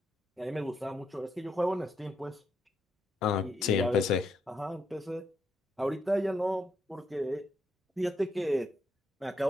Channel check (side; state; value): both; normal; correlation 0.78